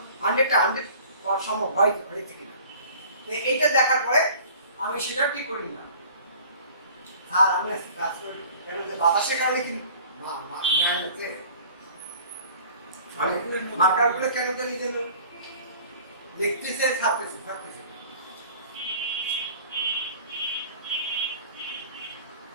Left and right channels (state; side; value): inverted; both; correlation -0.47